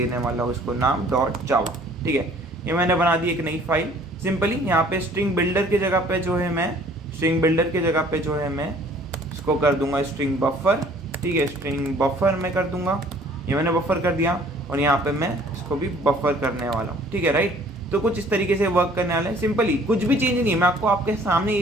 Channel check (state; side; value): normal; both; correlation 0.55